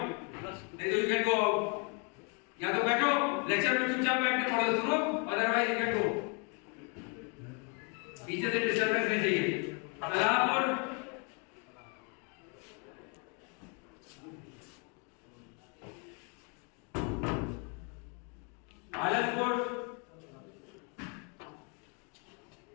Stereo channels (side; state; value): right; quieter; 35.2 dB